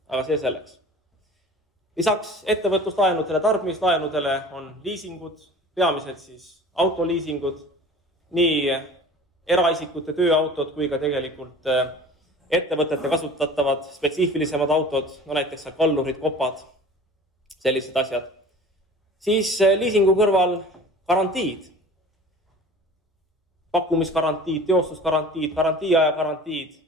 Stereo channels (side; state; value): both; normal; correlation 0.42